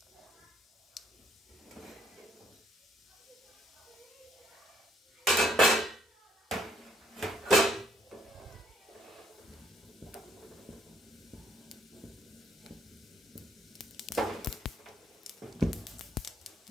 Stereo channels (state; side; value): normal; both; correlation 0.67